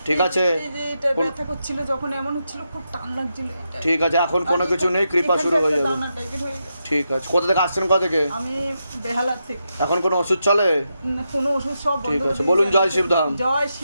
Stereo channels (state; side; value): inverted; both; correlation -0.85